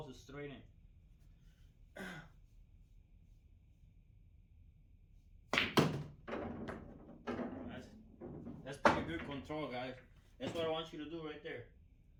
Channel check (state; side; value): identical; both; correlation 1.00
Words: are straight in. good control, guys. That's what I want you to do right there.